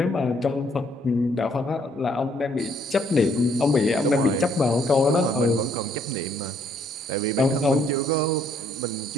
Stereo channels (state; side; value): normal; both; correlation 0.67